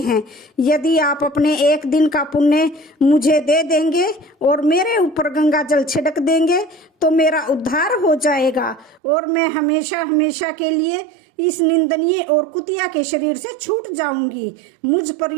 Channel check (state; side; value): drops out; left; at 9.0 s